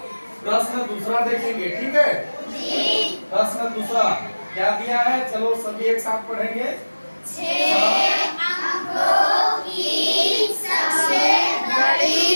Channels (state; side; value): inverted; both; correlation -1.00